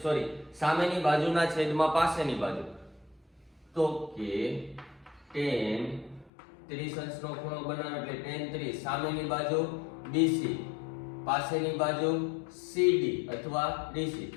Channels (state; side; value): drops out; right; at 6.3 s